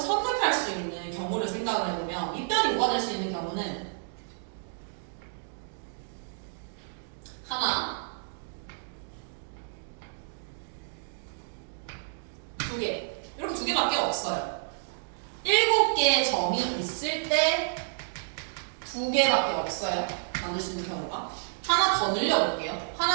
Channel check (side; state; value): left; silent; digital silence